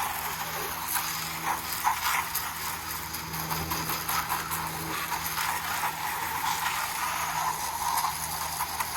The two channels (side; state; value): both; identical; correlation 1.00